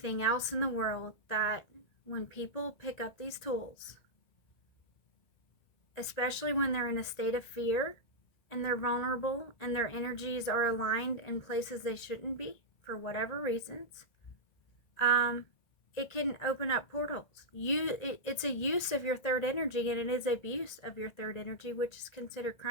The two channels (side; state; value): right; late; 1.8 ms